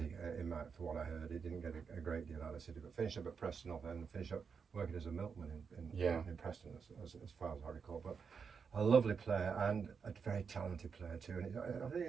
for what I heard. He didn't get a great deal out of City, but finished up at Preston and finished up working as a milkman in Preston, as far as I recall. But a lovely player and a very talented player too. And I think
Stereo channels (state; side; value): quieter; left; 6.0 dB